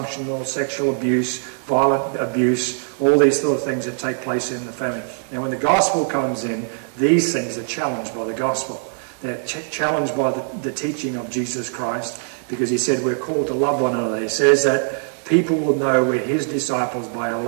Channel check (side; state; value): left; silent; 65 dB below the other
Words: sexual abuse, violent abuse, all these sort of things that take place in the family. Now, when the gospel comes in, these things are challenged by the gospel. They're challenged by the teaching of Jesus Christ, because he said we're called to love one another. He says that people will know we're his disciples by our